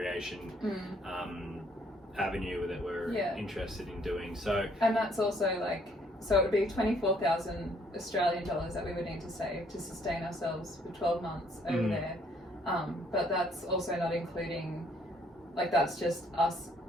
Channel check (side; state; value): both; normal; correlation 0.65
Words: avenue that we're interested in doing. So, and that's also like, so it would be 24,000 Australian dollars that we would need to save to sustain ourselves for 12 months over there. But that's also not including, like, that's just us